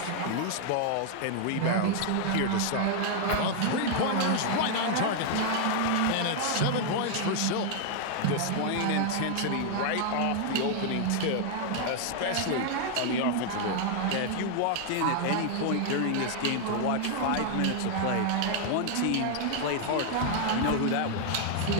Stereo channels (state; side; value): different; both; correlation 0.00